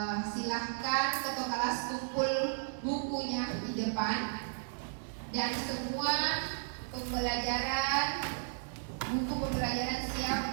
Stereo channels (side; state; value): left; silent; 55 dB below the other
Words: silahkan ketua kelas kumpul bukunya di depan dan semua buku pembelajaran